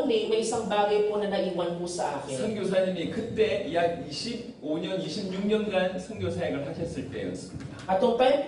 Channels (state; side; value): identical; both; correlation 1.00